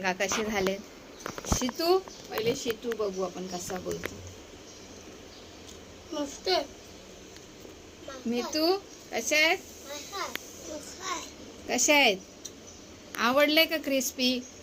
कसे झालेत. शितू, पहिले शितू बघू आपण कसा बोलतो. मस्त. मितू कसे आहेत? कसे आहेत? आवडले का क्रिस्पी?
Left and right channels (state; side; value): identical; both; correlation 1.00